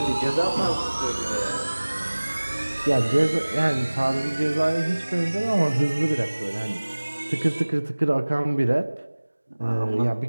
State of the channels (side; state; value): both; inverted; correlation -1.00